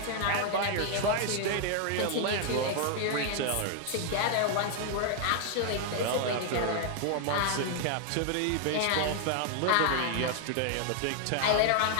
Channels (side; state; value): both; different; correlation 0.00